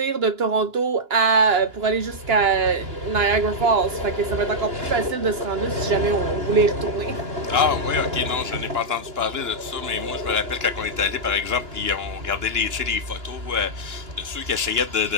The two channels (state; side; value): late; left; 2.9 ms